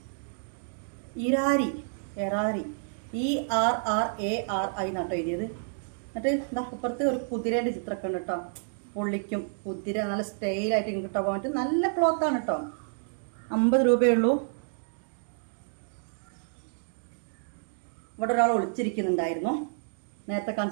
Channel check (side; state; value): left; silent; digital silence